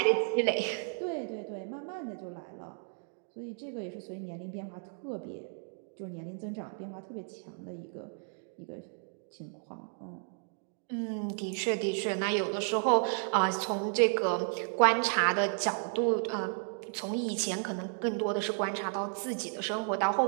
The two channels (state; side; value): silent; left; 56 dB below the other